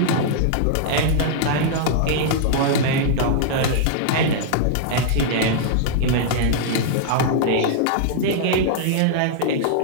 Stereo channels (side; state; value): both; different; correlation -0.01